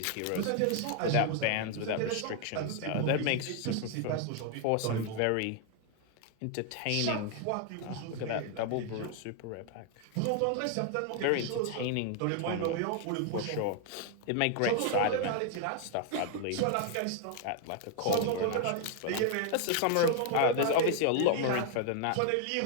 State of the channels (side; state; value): both; different; correlation 0.00